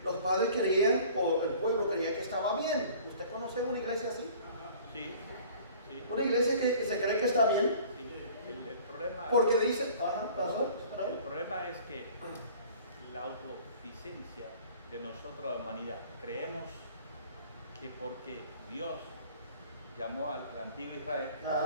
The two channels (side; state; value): both; inverted; correlation -0.49